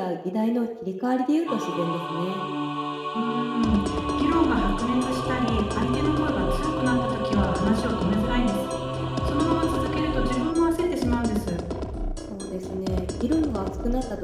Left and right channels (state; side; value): identical; both; correlation 1.00